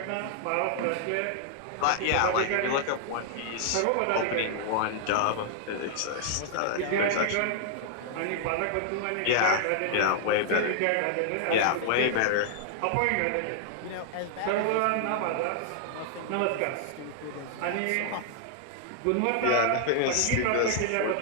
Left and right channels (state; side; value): different; both; correlation 0.00